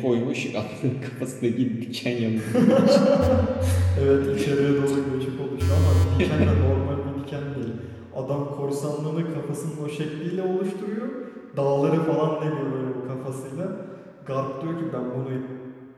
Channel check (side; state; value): both; identical; correlation 1.00